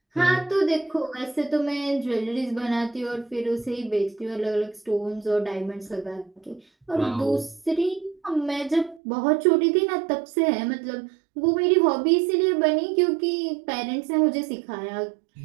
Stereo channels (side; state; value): left; drops out; at 9.0 s